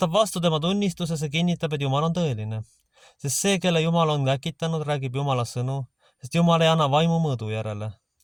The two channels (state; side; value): identical; both; correlation 1.00